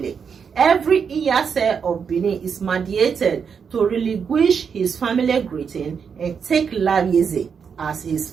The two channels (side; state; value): left; quieter; 6.5 dB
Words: Every Iyase of Benin is mandated to relinquish his family greeting and take Lawieze as his